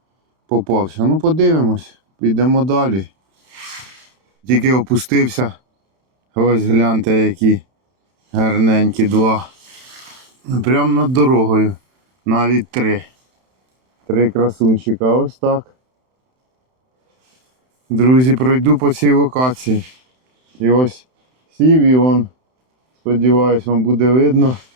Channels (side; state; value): left; late; 31 ms